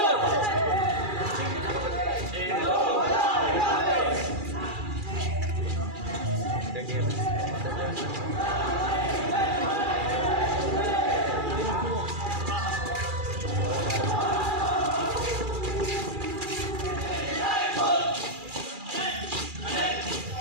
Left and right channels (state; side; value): late; left; 2.4 ms